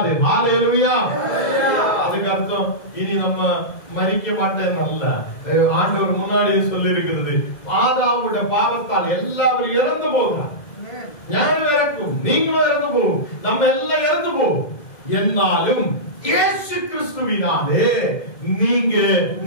அல்லேலூயா. அதுக்கு அர்த்தம் இனி நம்ம மரிக்க மாட்டேன் அல்ல. ஆண்டவர் முன்னாடியே சொல்லி இருக்கிறது, ஆதாமுடைய பாவத்தால் எல்லாரும் இறந்து போகிறார். ஞானம் இறக்கும், நீங்களும் இறந்து போகும், நம்ம எல்லாம் இறந்து போகும். என்னாலும் இயேசு கிறிஸ்துவினாலே நீங்க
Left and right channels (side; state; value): right; late; 2.0 ms